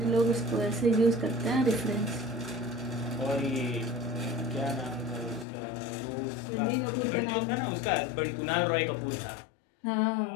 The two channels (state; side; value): drops out; right; at 5.5 s